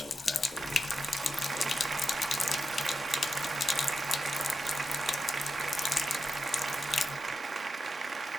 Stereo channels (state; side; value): normal; both; correlation 0.88